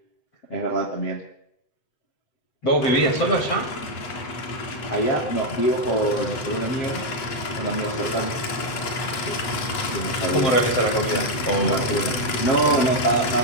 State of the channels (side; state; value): right; late; 8.3 ms